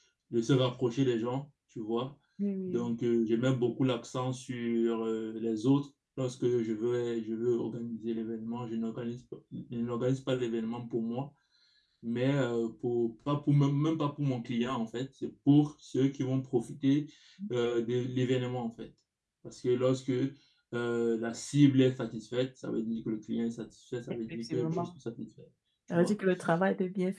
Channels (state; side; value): identical; both; correlation 1.00